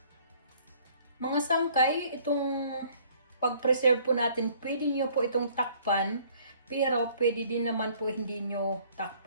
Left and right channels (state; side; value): inverted; both; correlation -0.58